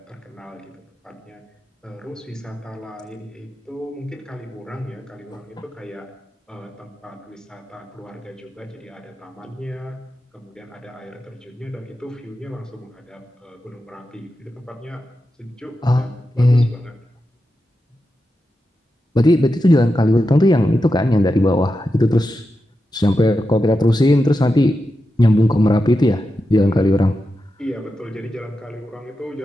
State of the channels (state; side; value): normal; both; correlation 0.89